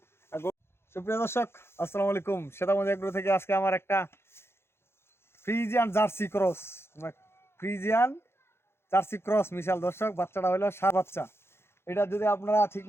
সুপ্রিয় দর্শক আসসালামু আলাইকুম, সেতামজ এগ্রো থেকে আজকে আমার একটা Friesian jersey cross, Friesian jersey cross মিশাল। দর্শক বাচ্চাটা হলো সার বাচ্চা। এটা যদি আপনারা ঠিক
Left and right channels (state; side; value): late; right; 0.12 ms